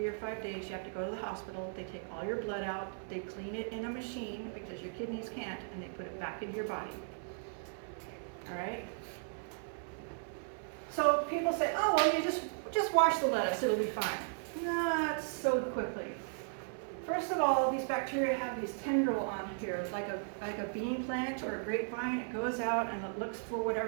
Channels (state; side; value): silent; left; 54 dB below the other